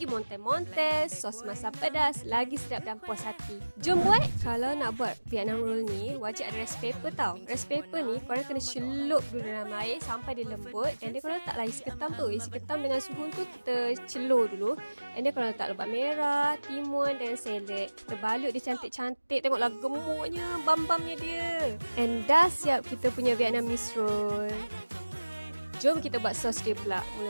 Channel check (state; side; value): inverted; both; correlation -1.00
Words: montes-montes, sos masam pedas, lagi sedap dan puas hati. Jom buat! Kalau nak buat Vietnam roll ni, wajib ada rice paper tau. Rice paper ni, korang kena celup dulu dalam air sampai dia lembut. And then korang letaklah isi ketam tu. Isi ketam dengan suhu tu kita celur dulu. And then korang letak lebat merah, timun dan seledek. Kita balut dia cantik-cantik. Tengoklah gemuknya, bam-bamnya dia. And dah siap kita punya Vietnamese roll. Jom kita buat sos dia pula.